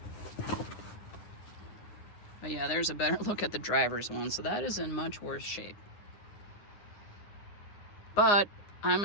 But yeah, there's a better look at the driver's one. So that is in much worse shape. But I'm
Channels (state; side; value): late; right; 9.7 ms